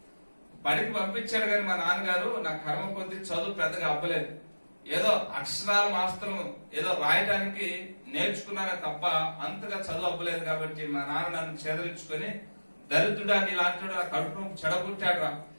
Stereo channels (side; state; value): both; inverted; correlation -1.00